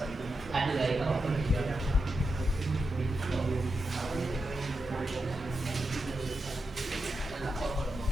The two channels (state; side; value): normal; both; correlation 0.87